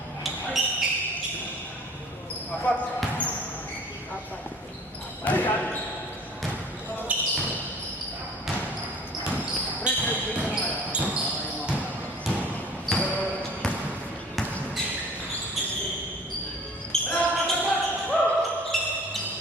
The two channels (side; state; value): both; normal; correlation 0.48